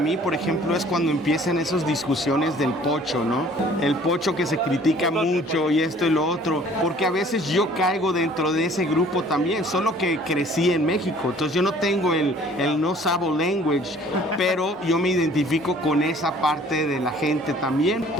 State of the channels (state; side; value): normal; both; correlation 0.53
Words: por ejemplo, es cuando empiezan esas discusiones del pocho, ¿no? El pocho que se critica mucho y esto y lo otro, porque a veces yo caigo dentro de ese grupo también, solo que crecí en México, entonces yo no tengo el no sabo language, pero yo me identifico con esa parte de la gente también.